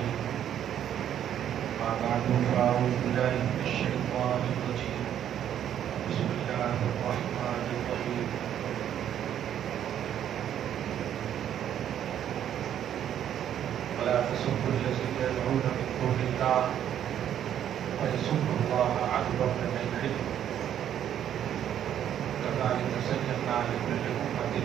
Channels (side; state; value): left; quieter; 10.2 dB